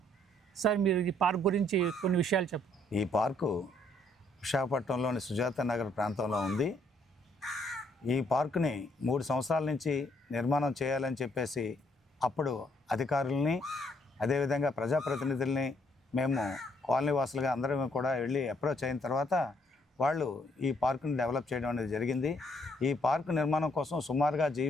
సార్, మీరు ఈ పార్క్ గురించి కొన్ని విషయాలు చెప్పండి. ఈ పార్కు విశాఖపట్నంలోని సుజాత నగర్ ప్రాంతంలో ఉంది. ఈ పార్కుని 3 సంవత్సరాల నుంచి నిర్మాణం చేయాలని చెప్పేసి అప్పుడు అధికారుల్ని, అదేవిధంగా ప్రజాప్రతినిధుల్ని మేము కాలనీ వాసులుగా అందరం కూడా వెళ్ళి అప్రోచ్ అయిన తర్వాత వాళ్ళు ఈ పార్కుని డెవలప్ చేయడం అనేది జరిగింది. ఈ పార్కు నిర్మాణం కోసం సుమారుగా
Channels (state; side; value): normal; both; correlation 0.69